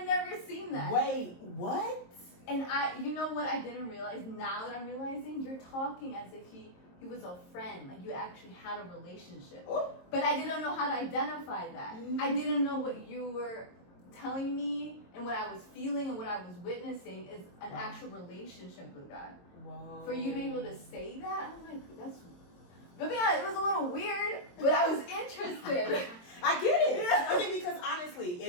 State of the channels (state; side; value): late; right; 22 ms